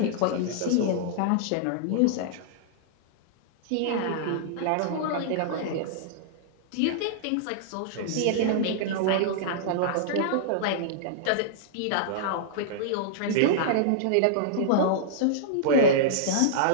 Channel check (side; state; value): both; different; correlation -0.02